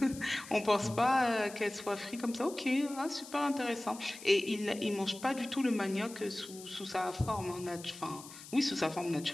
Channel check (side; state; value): left; noise; hiss, 16 dB below the sound